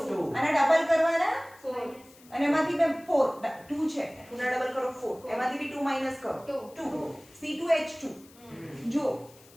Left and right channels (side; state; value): left; noise; hiss, 25 dB below the sound